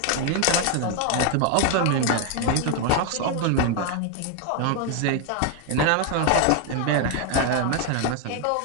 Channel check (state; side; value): different; both; correlation 0.01